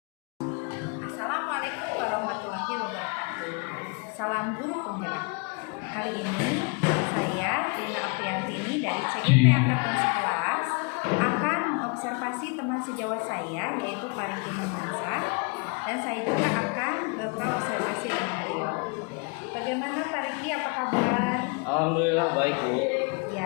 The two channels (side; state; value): right; quieter; 32.1 dB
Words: warahmatullahi wabarakatuh. Salam guru penggerak. Hari ini saya Lina Apriantini dari CGP Angkatan 11 akan mengobservasi teman sejawat saya yaitu Pariki Mansa, dan saya juga akan berobservasi dengan beliau. Bagaimana Pariki, apa kabar? Alhamdulillah baik, Bu.